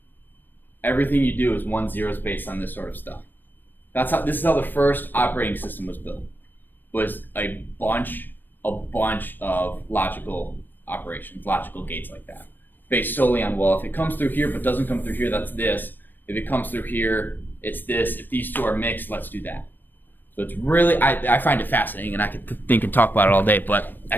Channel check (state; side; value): late; right; 0.092 ms